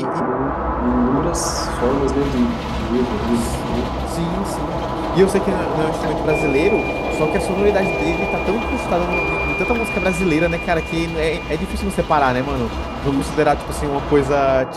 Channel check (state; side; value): identical; both; correlation 1.00